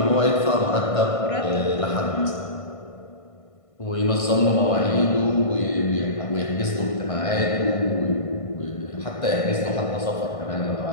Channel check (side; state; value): right; late; 1.5 ms